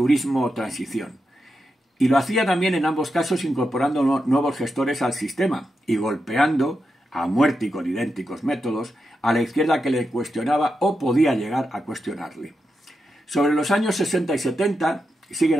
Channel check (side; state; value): both; normal; correlation 0.87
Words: o transición. Y lo hacía también en ambos casos incorporando nuevos gestores al sistema y golpeando, a muerte y con idénticos métodos, a la izquierda que le cuestionaba o podía llegar a cuestionarle. Sobre los años 60 y 70 siguen